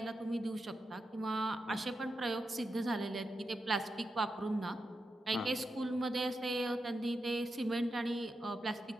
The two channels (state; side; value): normal; both; correlation 0.88